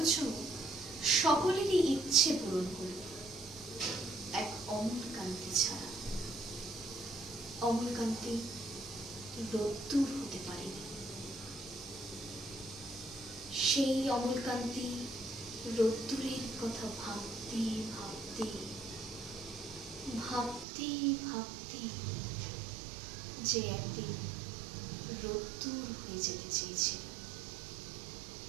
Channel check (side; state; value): left; drops out; at 20.7 s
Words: সকলেরই ইচ্ছে পূরণ করল, এক অমলকান্তি ছাড়া। অমলকান্তি রোদ্দুর হতে পারেনি। সেই অমলকান্তি রোদ্দুরের কথা ভাবতে ভাবতে ভাবতে ভাবতে যে একদিন রোদ্দুর হয়ে যেতে চেয়েছিল।